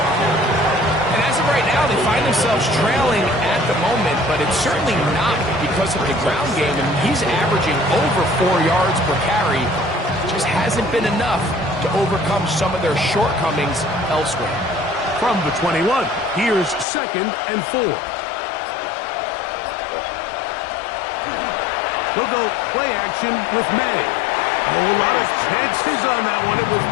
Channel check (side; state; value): right; drops out; at 16.9 s